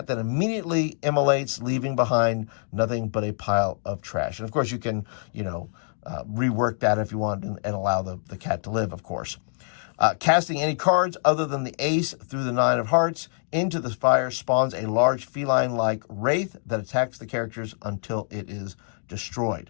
then immediately immolates, leaving behind nothing but a pile of trash. And of course, you can, rework that if you want and allow the cat to live, of course. Casting any cards other than the ace through the 9 of hearts into the fire spawns a large feline-like wraith that attacks the characters until it is destroyed.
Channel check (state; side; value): silent; right; 61 dB below the other